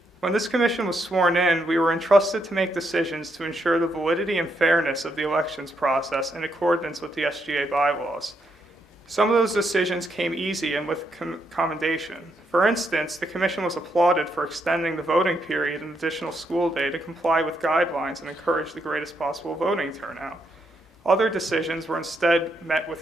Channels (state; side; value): normal; both; correlation 0.78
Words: When this Commission was sworn in, we were entrusted to make decisions to ensure the validity and fairness of the elections process in accordance with the SGA bylaws. Some of those decisions came easy and with commendation. For instance, the Commission was applauded for extending the voting period an additional school day to comply with guidelines and encourage the greatest possible voting turnout. Other decisions were instead met